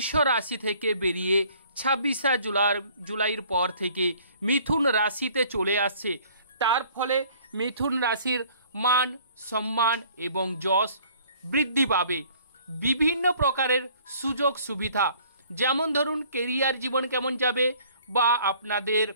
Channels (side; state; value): both; inverted; correlation -0.56